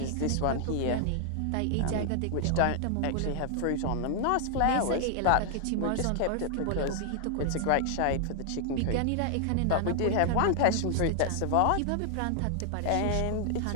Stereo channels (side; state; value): both; different; correlation 0.00